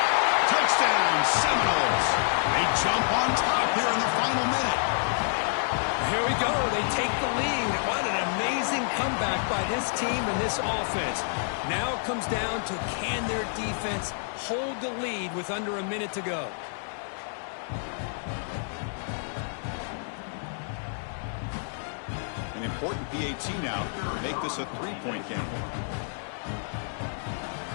Touchdown, Seminoles. They jump on top here in the final minute. Here we go. They take the lead. What an amazing comeback by this team and this offense. Now it comes down to can their defense hold the lead with under a minute to go. An important PAT now to make this a 3-point game.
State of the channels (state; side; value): silent; right; digital silence